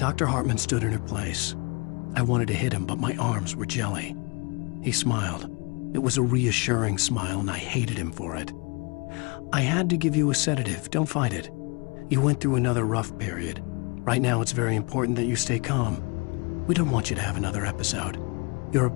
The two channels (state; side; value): quieter; right; 30.7 dB